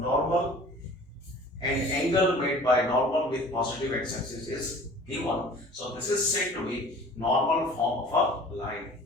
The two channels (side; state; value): both; normal; correlation 0.46